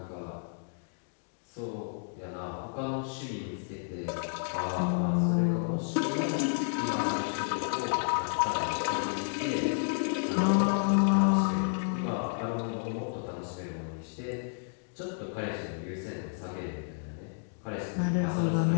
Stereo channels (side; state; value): right; silent; digital silence